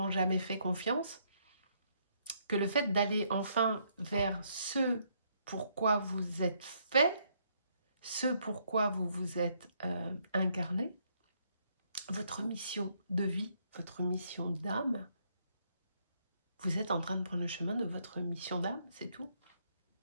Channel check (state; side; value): inverted; both; correlation -0.71